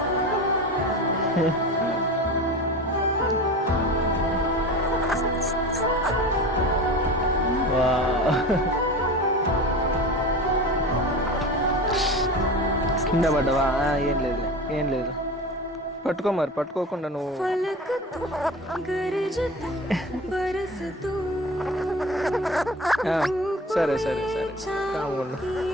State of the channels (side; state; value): both; normal; correlation 0.33